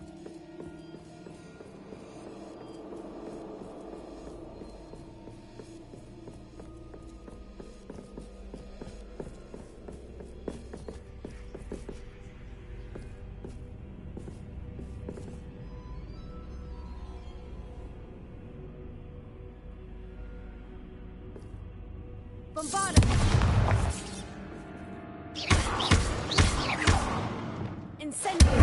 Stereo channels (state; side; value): identical; both; correlation 1.00